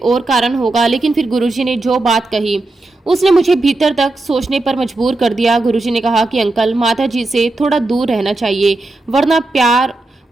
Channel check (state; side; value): quieter; left; 3.0 dB